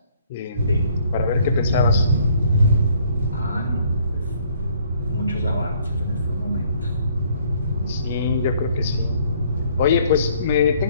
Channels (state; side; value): inverted; both; correlation -0.62